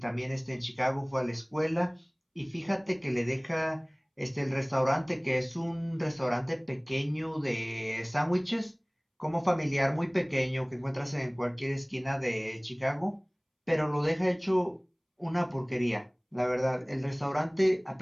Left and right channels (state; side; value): identical; both; correlation 1.00